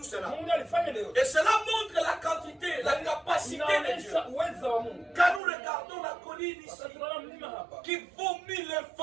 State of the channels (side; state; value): left; drops out; at 5.4 s